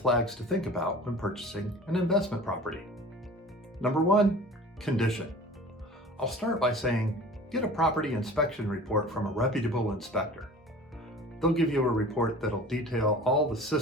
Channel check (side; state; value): both; normal; correlation 0.41